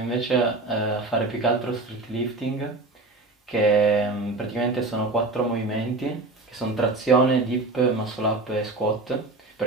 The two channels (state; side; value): quieter; left; 3.2 dB